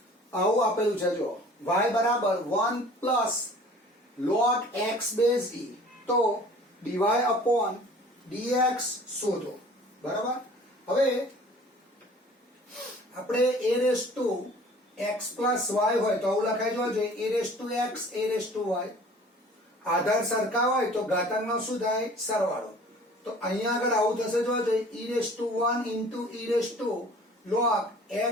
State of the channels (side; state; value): both; normal; correlation 0.48